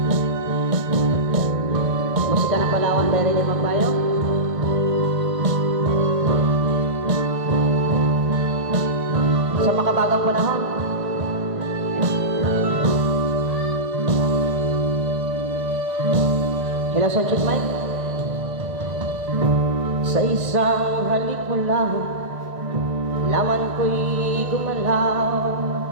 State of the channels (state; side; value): late; left; 1.4 ms